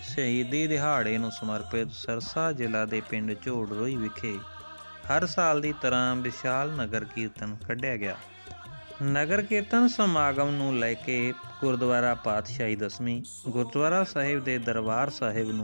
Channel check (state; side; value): inverted; both; correlation -1.00